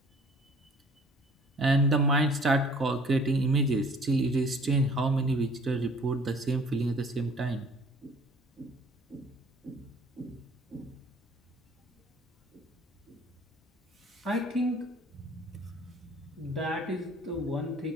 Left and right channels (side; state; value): both; normal; correlation 0.53